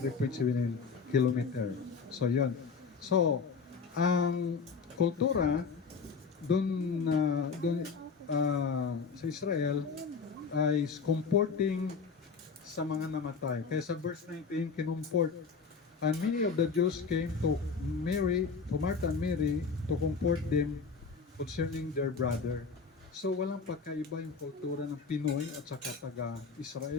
3.7 kilometer. So, yun. So, ang kultura dun sa Israel ay comforting sa mga namatay. Kaya sa verse 19, kinumport. And many of the Jews came to Martha and Mary to comfort them concerning their brother. So walang pagkaiba yung kultura ng Pinoy at saka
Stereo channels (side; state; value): right; quieter; 5.2 dB